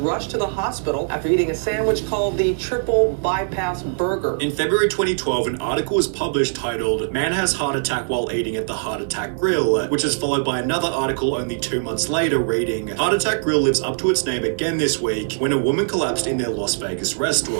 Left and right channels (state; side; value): silent; left; 61 dB below the other